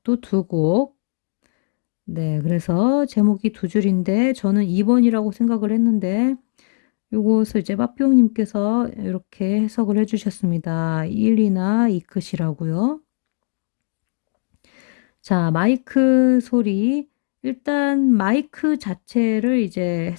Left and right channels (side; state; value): right; silent; 59 dB below the other